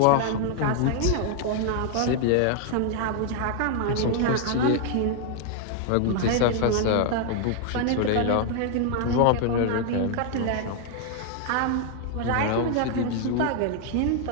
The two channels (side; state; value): both; different; correlation 0.00